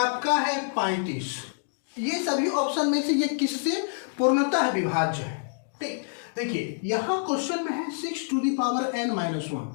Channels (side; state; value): right; silent; digital silence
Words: है 35। ये सभी ऑप्शन में से ये किससे पूर्णतः विभाज्य है? ठीक, देखिए यहां क्वेश्चन में है 6 to the power n minus 1।